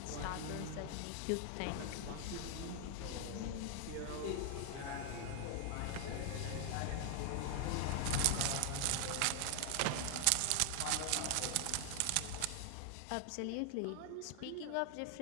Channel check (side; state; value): both; different; correlation 0.00